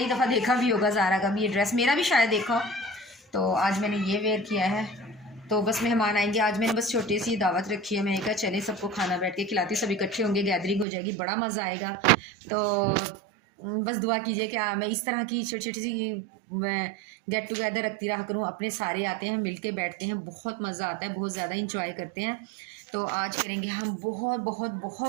दफ़ा देखा भी होगा ज़ारा का भी ये ड्रेस, मेरा भी शायद देखा हो। तो आज मैंने ये वेयर किया है। तो बस मेहमान आएंगे आज, मैंने बस छोटी सी दावत रखी है। मैंने कहा चले सबको खाना बैठ के खिलाती, सब इकट्ठे होंगे, गैदरिंग हो जाएगी, बड़ा मज़ा आएगा। तो बस दुआ कीजिए कि मैं इस तरह की छोटी छोटी सी मैं गेट टुगेदर रखती रहा करूँ। अपने सारे आते हैं, मिल के बैठते हैं, बहुत मज़ा आता है, बहुत ज़्यादा इंजॉय करते हैं। तो आज करेंगे हम बहुत बहुत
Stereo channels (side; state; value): left; drops out; at 10.9 s